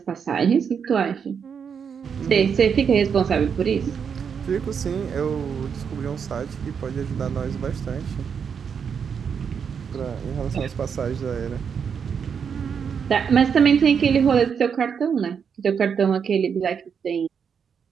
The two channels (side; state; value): left; quieter; 6.9 dB